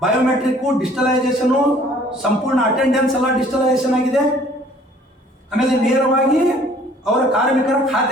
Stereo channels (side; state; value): both; normal; correlation 0.56